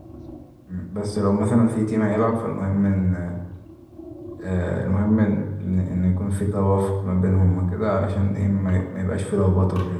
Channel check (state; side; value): identical; both; correlation 1.00